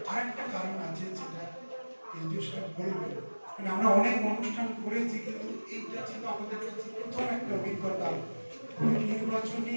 আর একটা কারণ আছে যেটা বলবেন, মানে আমরা অনেক অনুষ্ঠান করেছি কিন্তু এইটা ছিল আমাদের কাছে প্রথম একটা অভিজ্ঞতা। নির্বাচনী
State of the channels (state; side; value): inverted; both; correlation -1.00